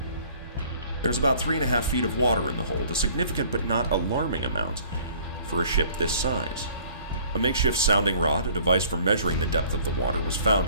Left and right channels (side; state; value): both; inverted; correlation -0.53